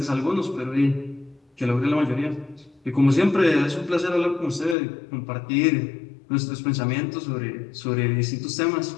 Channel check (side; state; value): right; drops out; at 4.8 s